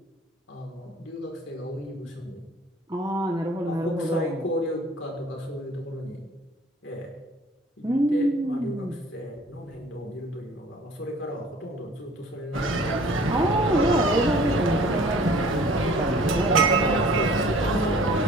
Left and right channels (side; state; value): both; normal; correlation 0.50